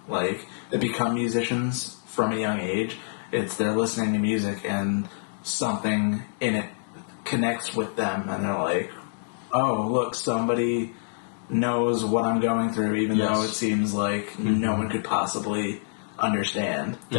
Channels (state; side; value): silent; right; digital silence